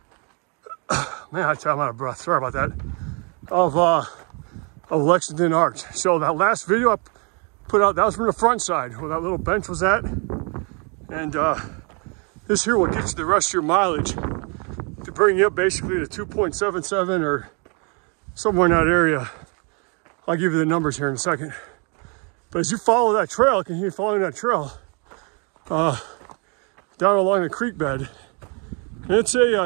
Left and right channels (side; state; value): left; quieter; 34.6 dB